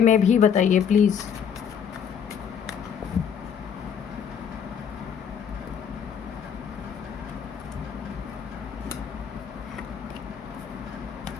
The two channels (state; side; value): quieter; right; 7.7 dB